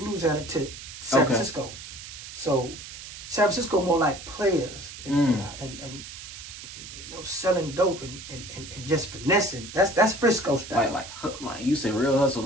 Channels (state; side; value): noise; right; hiss, 12 dB below the sound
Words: to San Francisco. So San Francisco more like players and you know, selling dope and just finessing. That's Frisco style. Like you say, real hustle,